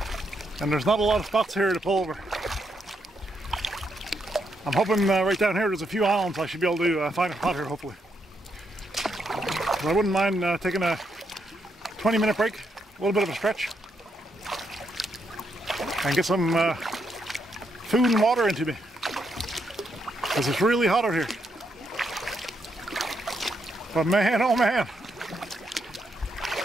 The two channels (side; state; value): both; normal; correlation 0.79